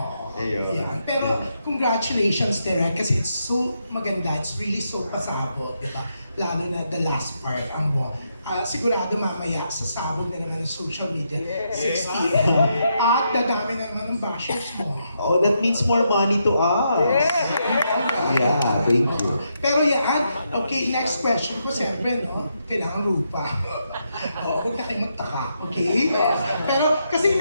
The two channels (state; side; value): inverted; both; correlation -0.80